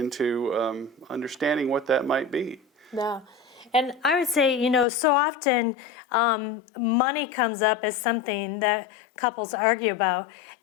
understanding what that might be. Yeah. And I would say, so often money comes up as something that couples argue about.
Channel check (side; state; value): right; drops out; at 4.9 s